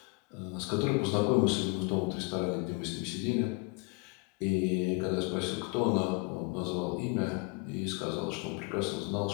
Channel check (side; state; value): right; quieter; 30.8 dB